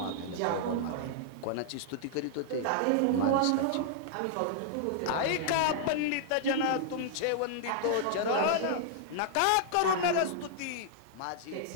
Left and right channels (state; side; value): different; both; correlation -0.01